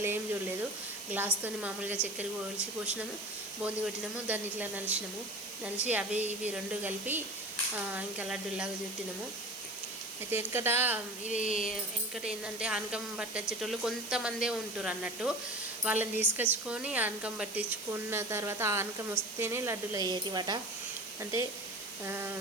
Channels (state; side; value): noise; right; hiss, 12 dB below the sound